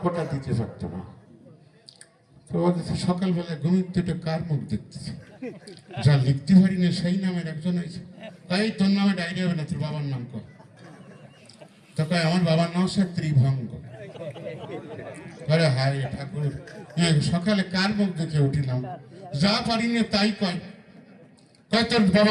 দিতে পারতো না। তো সকালবেলা ঘুমিয়ে কার মুখ দেখতেছে, যা লিখতে পারি না সেই নামের একজন আছে। তাই তোর নামে ডায়েরি হবে না, তোর বাবার নাম কর। তো কয় আমার বাবার নাম হচ্ছে ত্রিভঙ্গ। আরে হায় ঠাকুর, সকালে কার মুখ দেখে উঠিলাম, যা পারি না তাই কয়। কয় তোর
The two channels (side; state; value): both; identical; correlation 1.00